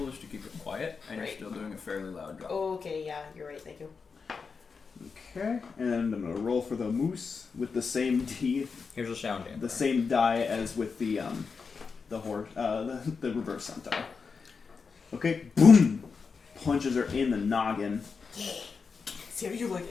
is to keep it quiet, and Right. you're still doing a fairly loud drop. Okay, yeah, you're right. Thank you. Okay. And I'm gonna roll for the moose with the same Here's a sound damper. the same die as with the horse, the reverse centaur. Okay, boom! Punches her in the noggin. See how you like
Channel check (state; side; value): quieter; right; 5.2 dB